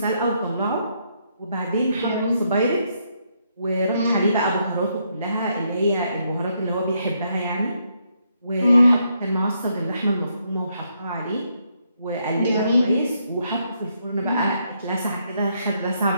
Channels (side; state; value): both; inverted; correlation -0.76